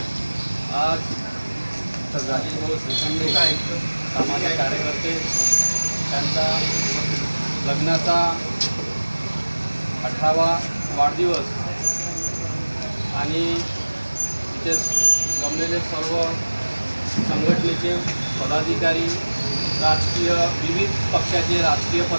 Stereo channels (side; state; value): both; inverted; correlation -1.00